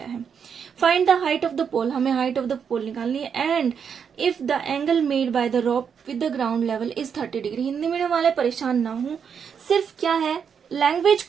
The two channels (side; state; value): left; quieter; 7.1 dB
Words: है। Find the height of the pole, हमें हाइट ऑफ द पोल निकालनी है, and if the angle made by the rope with the ground level is 30 degree. Hindi medium वाले परेशान ना हो, सिर्फ क्या है, लैंग्वेज